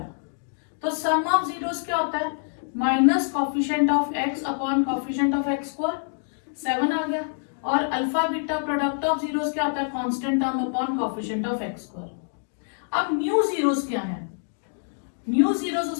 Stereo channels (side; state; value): right; silent; digital silence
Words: तो सम ऑफ जीरोस क्या होता है, minus coefficient of x upon coefficient of x square, 7 आ गया। और alpha beta product of zeros क्या होता है, constant term upon coefficient of x square. अब न्यू जीरोस क्या है, न्यू जीरोस